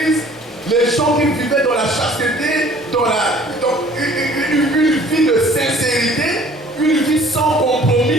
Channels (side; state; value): both; normal; correlation 0.53